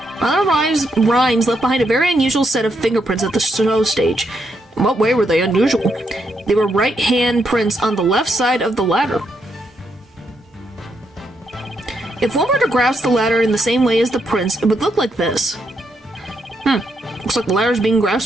Rhymes left behind a very unusual set of fingerprints at the show stage. In what way were they unusual? They were right hand prints on the left side of the ladder. If one were to grasp the ladder in the same way as the prints, it would look like this. Looks like the ladder's being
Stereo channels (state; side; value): normal; both; correlation 0.79